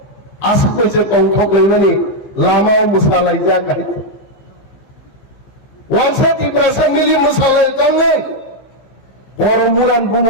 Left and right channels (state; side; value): late; right; 15 ms